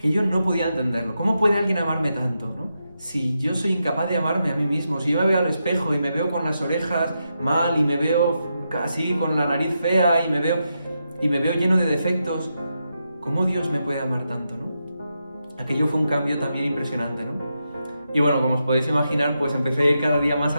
yo no podía entenderlo. ¿Cómo puede alguien amarme tanto, no? Si yo soy incapaz de amarme a mí mismo, si yo me veo al espejo y me veo con las orejas mal y me veo así con la nariz fea y me veo lleno de defectos, ¿cómo Dios me puede amar tanto, no? Aquello fue un cambio también impresionante, ¿no? Y bueno, como os podéis imaginar, pues empecé a ir cada día más a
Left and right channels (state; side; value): inverted; both; correlation -0.85